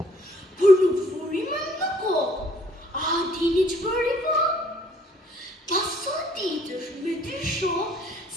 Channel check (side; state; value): both; normal; correlation 0.61